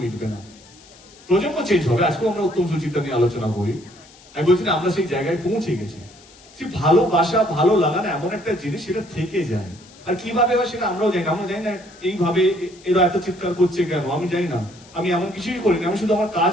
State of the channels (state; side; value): noise; left; hiss, 24 dB below the sound